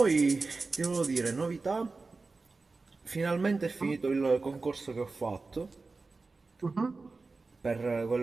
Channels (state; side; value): quieter; left; 3.8 dB